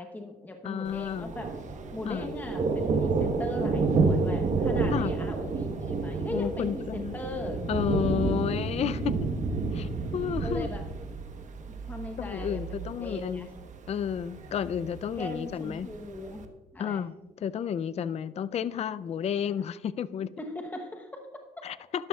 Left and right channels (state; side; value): normal; both; correlation 0.56